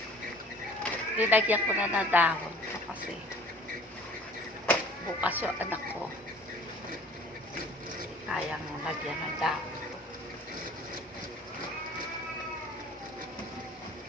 Linagyan ko na ng dahon ko kasi bukas yung anak ko. Kayang lagyan ng dahon.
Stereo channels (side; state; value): both; normal; correlation 0.49